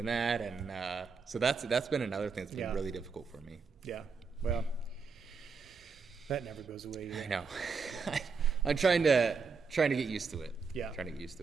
that. And so that's been another thing that's been really difficult for me. Yeah. Well, that never goes away either. I know. I'm trying to get used to it. Yeah. Trying to get used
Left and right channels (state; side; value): quieter; left; 5.1 dB